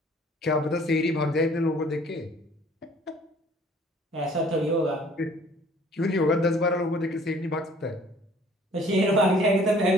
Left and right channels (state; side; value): normal; both; correlation 0.55